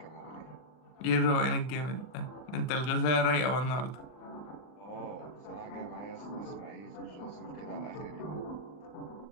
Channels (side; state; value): right; late; 40 ms